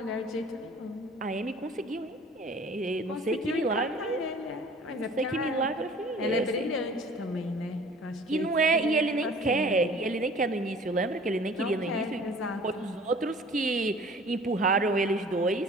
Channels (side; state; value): both; normal; correlation 0.48